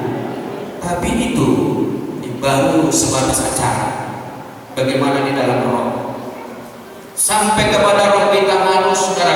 Tapi itu baru sebatas acara. Bagaimana di dalam roh? Sampai kepada roh kita harus,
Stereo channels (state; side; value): identical; both; correlation 1.00